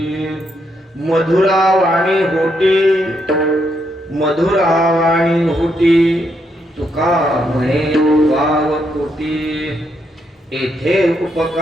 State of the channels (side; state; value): both; normal; correlation 0.78